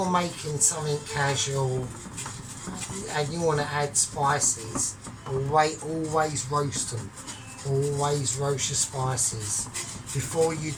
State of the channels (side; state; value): both; identical; correlation 1.00